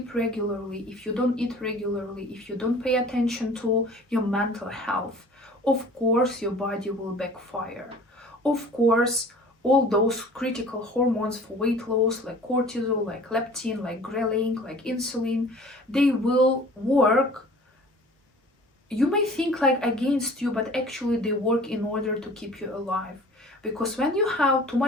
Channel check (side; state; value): both; normal; correlation 0.46